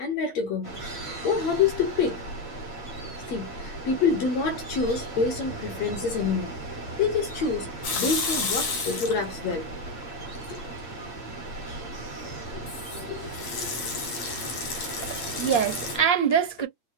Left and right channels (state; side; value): late; right; 8.6 ms